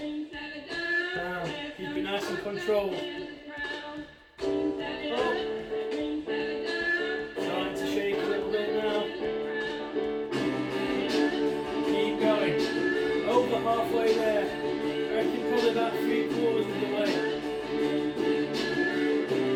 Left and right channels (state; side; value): identical; both; correlation 1.00